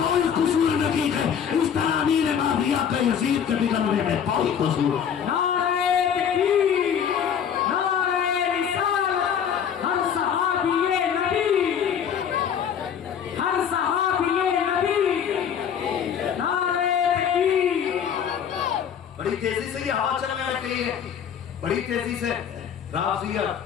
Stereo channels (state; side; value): quieter; right; 8.1 dB